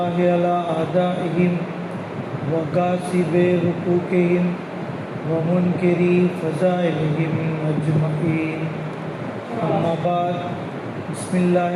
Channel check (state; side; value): identical; both; correlation 1.00